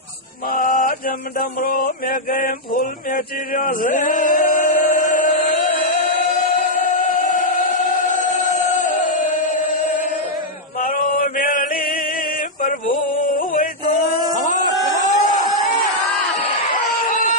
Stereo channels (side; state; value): both; normal; correlation -0.04